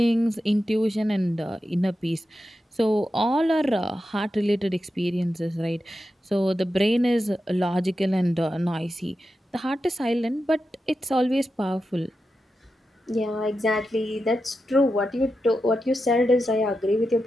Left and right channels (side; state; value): both; normal; correlation 0.90